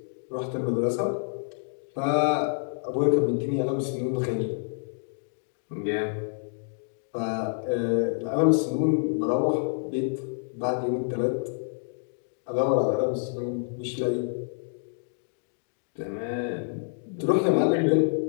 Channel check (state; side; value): silent; right; 59 dB below the other